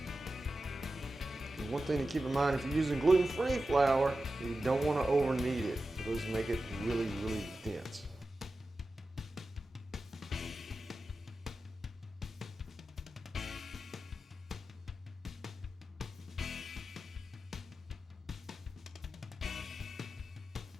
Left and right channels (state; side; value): normal; both; correlation 0.93